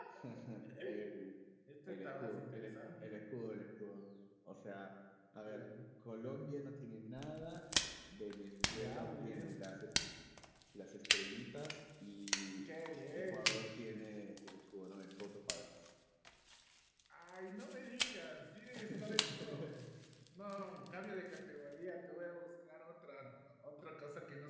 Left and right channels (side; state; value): both; identical; correlation 1.00